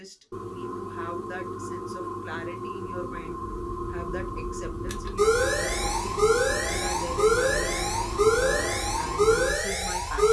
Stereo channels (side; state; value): both; identical; correlation 1.00